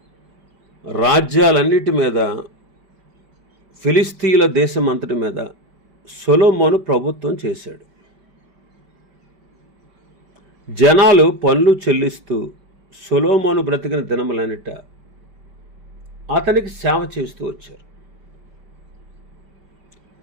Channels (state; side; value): late; left; 5.1 ms